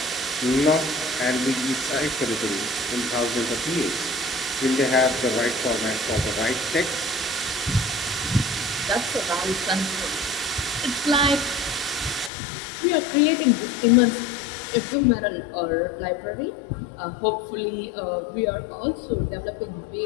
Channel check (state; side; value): drops out; right; at 12.3 s